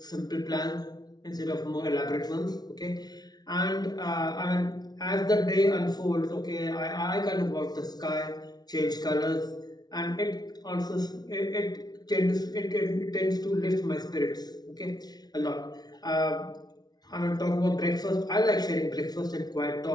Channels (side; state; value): right; late; 0.19 ms